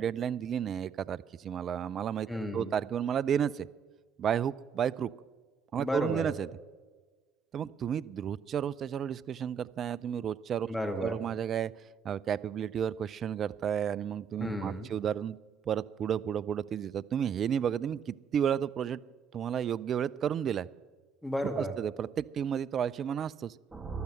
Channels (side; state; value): left; quieter; 7.1 dB